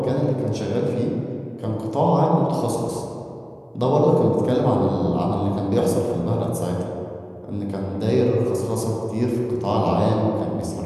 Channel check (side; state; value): both; identical; correlation 1.00